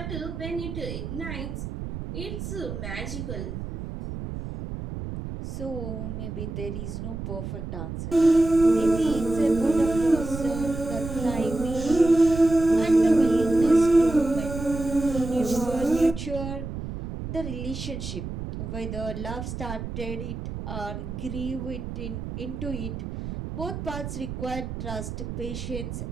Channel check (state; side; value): noise; right; rumble, 7 dB below the sound